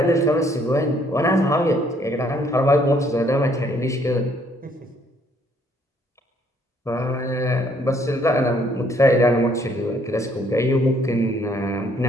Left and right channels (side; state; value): both; normal; correlation 0.66